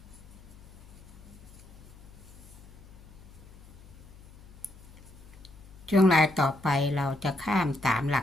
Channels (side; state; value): left; noise; hum, 20 dB below the sound